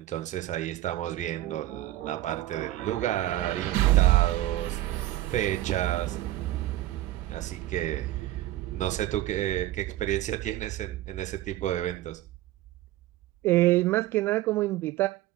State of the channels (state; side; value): quieter; left; 15.4 dB